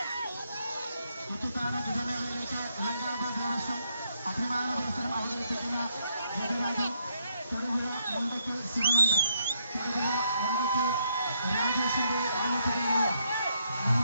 ഇത്തിത്താന ഗജമേളയിലേക്ക് ലങ്കാപ ദേവസ്വം അഭിമാന മത്സരം അവതരിപ്പിക്കുന്ന ഗജരാജൻ തൊടുപുഴ മുണ്ടയ്ക്ക് ശിവനന്ദൻ, തൊടുപുഴ മുണ്ടയ്ക്ക് രാജേഷിന്റെ ആലപ്പുഴയിലുള്ള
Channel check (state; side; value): inverted; both; correlation -0.75